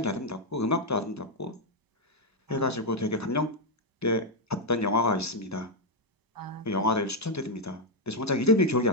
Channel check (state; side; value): normal; both; correlation -0.01